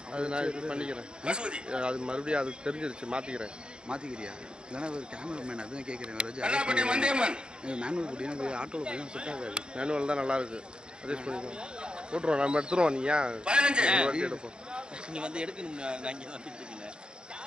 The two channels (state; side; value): late; left; 0.050 ms